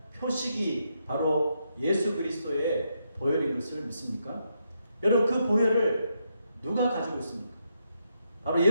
표식이 바로 예수 그리스도의 보혈인 것을 믿습니까? 여러분, 그 보혈을 누가 가지고 있습니까? 바로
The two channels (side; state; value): both; inverted; correlation -0.80